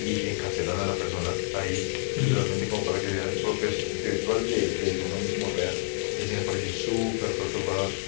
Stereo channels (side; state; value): right; silent; digital silence